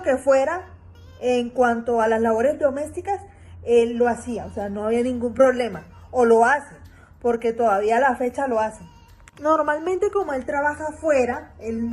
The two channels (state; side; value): identical; both; correlation 1.00